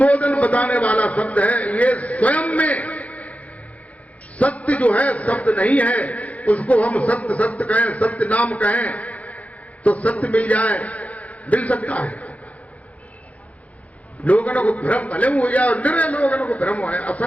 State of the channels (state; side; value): late; right; 0.067 ms